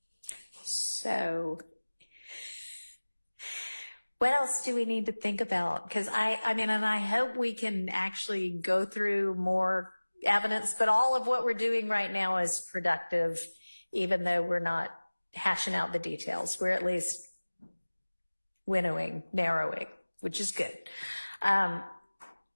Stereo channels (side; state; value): both; inverted; correlation -1.00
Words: So what else do we need to think about? Because I mean, and I hope we can actually go through more evidence, but all of what we're doing right now is productive, even though we're not hashing out the details. We're at least winnowing, narrowing, which is good.